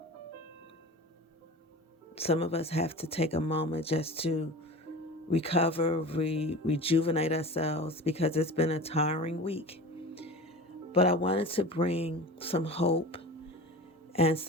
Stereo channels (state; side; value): normal; both; correlation 0.35